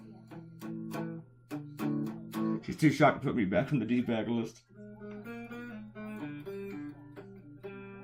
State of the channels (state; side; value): identical; both; correlation 1.00